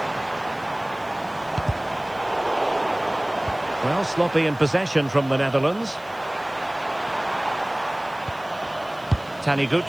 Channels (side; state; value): right; noise; hiss, 27 dB below the sound